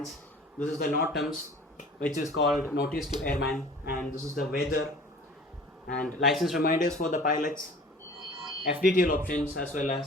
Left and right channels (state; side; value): normal; both; correlation 0.46